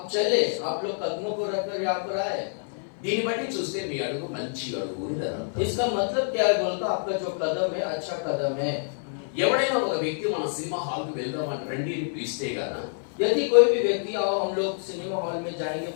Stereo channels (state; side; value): silent; right; 56 dB below the other